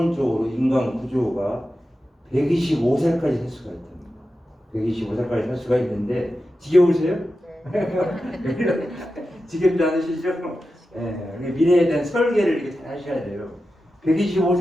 인간 구조가 125세까지 살 수가 있답니다. 125세까지 살 수가 있는데 지겨우세요? 네. 지겹지 않으시죠? 미래에 대한 설계를 이렇게 잘 하셔야 돼요.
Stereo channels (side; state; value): both; normal; correlation 0.92